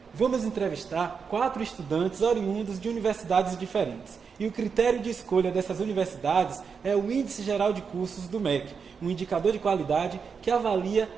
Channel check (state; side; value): quieter; left; 5.9 dB